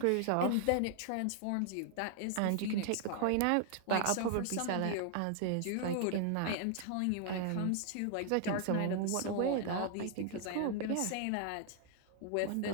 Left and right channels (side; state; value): both; different; correlation 0.00